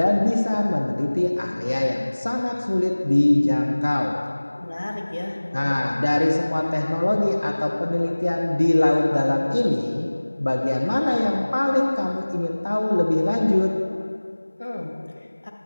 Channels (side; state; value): both; inverted; correlation -1.00